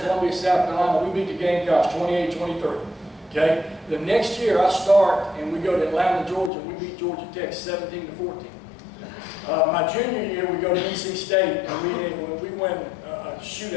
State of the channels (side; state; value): right; drops out; at 6.5 s